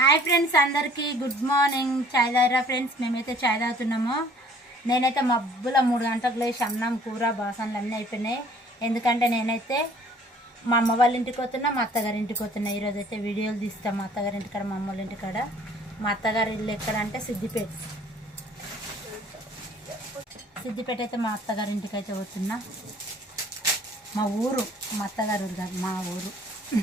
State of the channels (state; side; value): normal; both; correlation 0.55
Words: Hi friends, అందరికీ good morning. చాయ్ తాగిరా friends? మేమైతే చాయ్ తాగుతున్నాము. నేనైతే మబ్బుల 3 గంటలకు లేచి అన్నం కూర బాసనలు అన్నీ అయిపోయినాయి. ఎందుకంటే నేనైతే మా అమ్మ వాళ్ళ ఇంటికి పోతున్నా, మా అత్తగారి ఇంటికి పోతున్నా. ఈరోజు అయితే వీడియోలు తీస్తాం మా అత్తగారి ఇంటికాడ, మా అమ్మ వాళ్ళ ఇంటికాడ. మా అత్తగారి ఇల్లు ఎక్కడంటే సిద్దిపేట. సిద్దిపేట అయితే మా అత్తగారి ఇంటికి అయితే పోతున్నా. మా ఊరు, మా అత్తగారి ఊరు కాదు, మా ఊరు